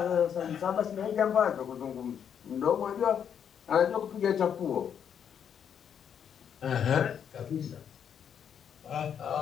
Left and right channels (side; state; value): right; quieter; 8.3 dB